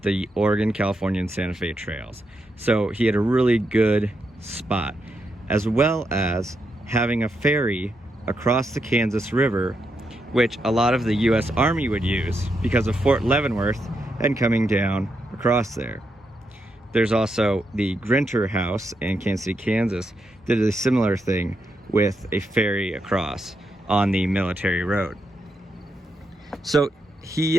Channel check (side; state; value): both; normal; correlation 0.82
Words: the Oregon, California, and Santa Fe trails. So he had a really good spot, as well as having a ferry across the Kansas River, which a lot of the US Army would use because of Fort Leavenworth and coming down across there. There's also the Grinter House in Kansas City, Kansas, did a similar thing with a ferry across on the military road. So